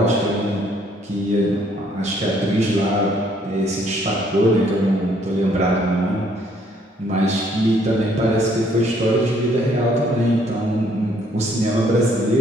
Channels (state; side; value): normal; both; correlation 0.65